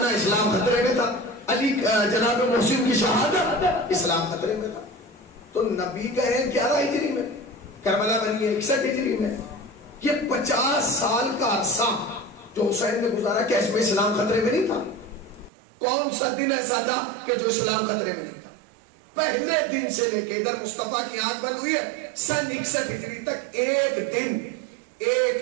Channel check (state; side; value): drops out; left; at 15.5 s